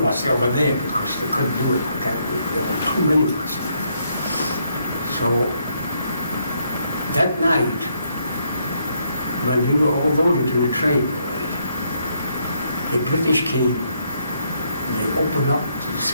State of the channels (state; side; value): inverted; both; correlation -0.74